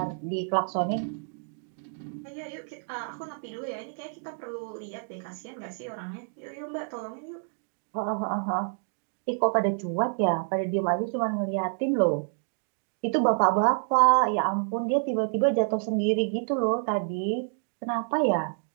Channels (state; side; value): silent; left; 59 dB below the other